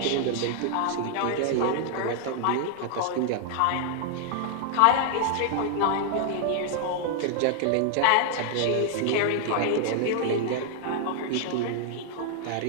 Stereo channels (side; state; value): both; different; correlation 0.00